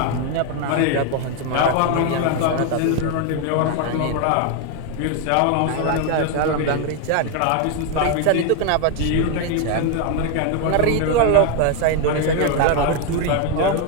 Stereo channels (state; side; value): different; both; correlation 0.01